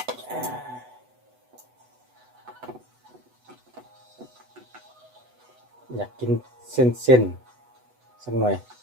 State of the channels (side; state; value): left; late; 8.0 ms